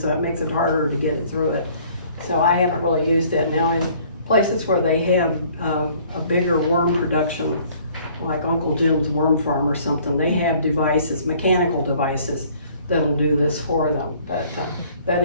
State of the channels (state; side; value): inverted; both; correlation -0.57